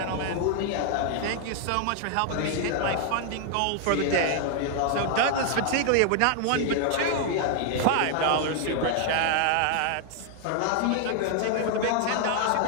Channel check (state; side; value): different; both; correlation 0.00